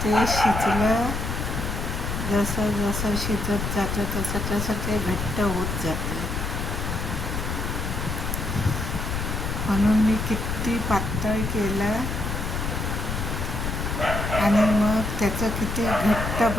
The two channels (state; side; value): noise; left; rumble, 3 dB below the sound